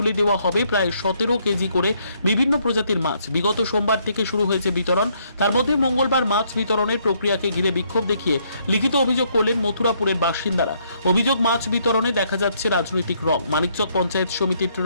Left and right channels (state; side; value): inverted; both; correlation -0.70